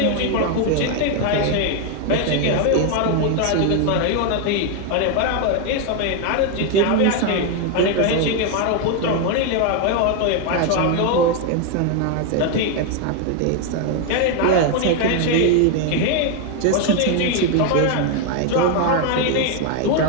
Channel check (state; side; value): different; both; correlation 0.01